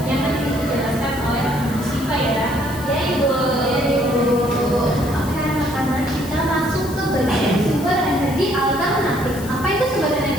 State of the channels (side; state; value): left; noise; hiss, 15 dB below the sound